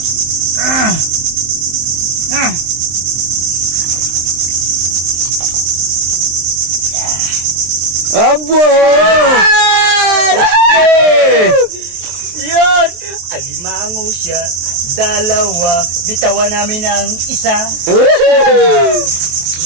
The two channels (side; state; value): left; late; 23 ms